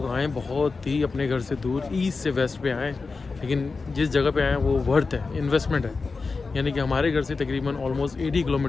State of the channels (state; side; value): quieter; right; 4.3 dB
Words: आए बहुत ही अपने घर से दूर, ईस्ट से वेस्ट पे आए, लेकिन जिस जगह पे आए वो वर्थ है, इन्वेस्टमेंट है। यानी कि हमारे घर से तकरीबन ऑलमोस्ट 80